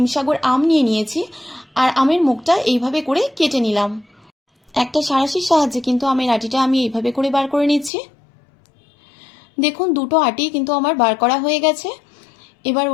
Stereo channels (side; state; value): right; drops out; at 7.9 s